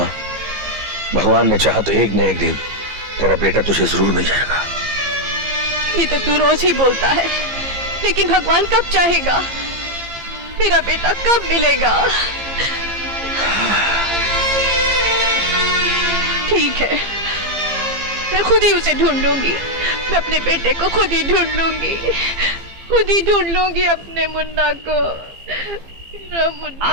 भगवान ने चाहा तो एक न एक दिन तेरा बेटा तुझे जरूर मिल जाएगा। ये तो तू रोज ही बोलता है, लेकिन भगवान कब चाहेगा? मेरा बेटा कब मिलेगा? ठीक है, मैं खुद ही उसे ढूंढ लूंगी। मैं अपने बेटे को खुद ही ढूंढ लूंगी, खुद ही ढूंढ लूंगी अपने मुन्ना को। मुन्ना।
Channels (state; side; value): late; left; 15 ms